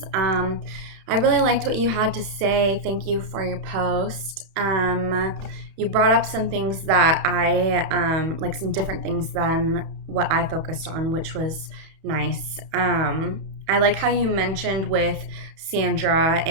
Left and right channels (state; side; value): late; left; 31 ms